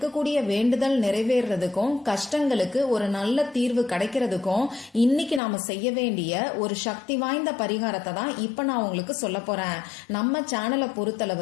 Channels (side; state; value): right; drops out; at 5.4 s